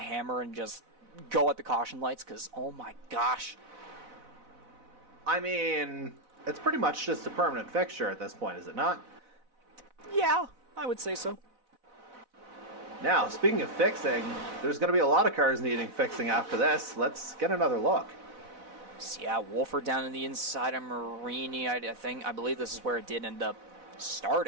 and just go at the caution lights, because, oh my gosh. I mean, it's pretty much just a permanent fixture at this point, is it not? Yeah, I would say so. Now, speaking of fixing, there's going to be a lot of cars needing fixing after this. Let's get another look. So yeah, Wolford down in the inside of Marini. I believe this is where it did end up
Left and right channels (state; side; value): late; left; 4.0 ms